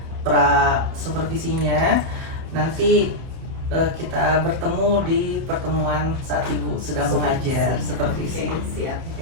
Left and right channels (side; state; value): left; late; 31 ms